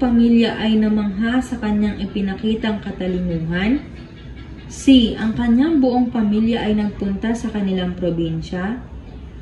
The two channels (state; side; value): identical; both; correlation 1.00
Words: pamilya ay namangha sa kanyang ipinakitang katalinuhan. C. Ang kanyang buong pamilya ay nagpunta sa kanilang probinsya.